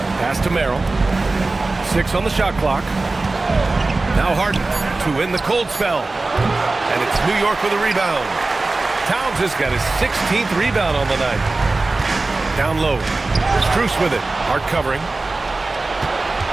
Pass to Merrill. 6 on the shot clock. Now Harden to win the cold spell. And it's New York with a rebound. Towns has got his 16th rebound on the night. Down low. Strus with it. Hard covering.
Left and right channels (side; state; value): left; quieter; 3.3 dB